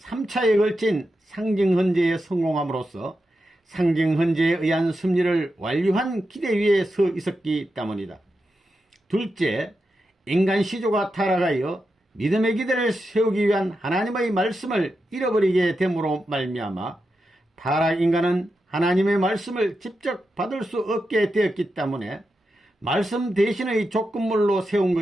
걸친 상징 헌제에 성공함으로써 상징 헌제에 의한 승리를 완료한 기대 위에 서 있었기 때문이다. 둘째, 인간 시조가 타락하여 믿음의 기대를 세우기 위한 하나님의 말씀을 잃어버리게 됨으로 말미암아 타락 인간은 하나님의 말씀을 직접 받을 수 없게 되었기 때문에 말씀 대신의 조건물로 세운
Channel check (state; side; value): normal; both; correlation 0.88